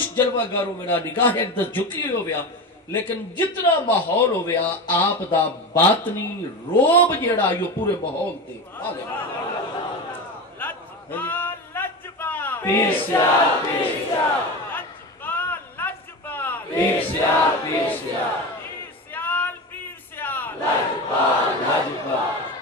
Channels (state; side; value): normal; both; correlation 0.24